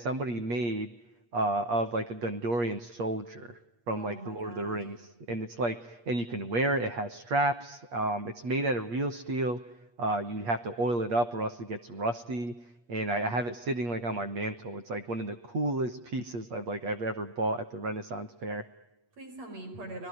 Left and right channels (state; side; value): late; left; 8.5 ms